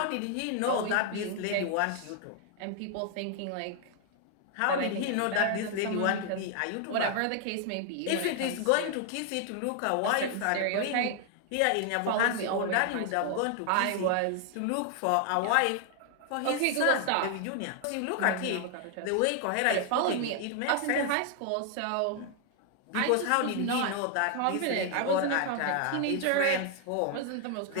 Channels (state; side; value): different; both; correlation 0.00